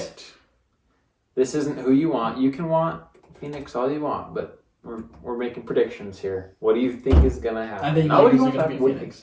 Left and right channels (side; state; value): both; identical; correlation 1.00